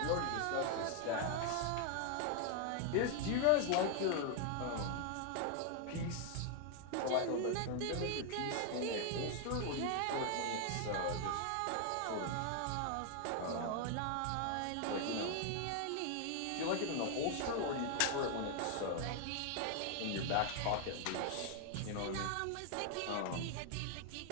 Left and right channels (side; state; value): both; different; correlation 0.00